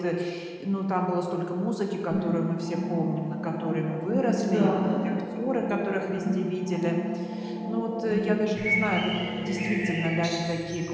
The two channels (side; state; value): both; identical; correlation 1.00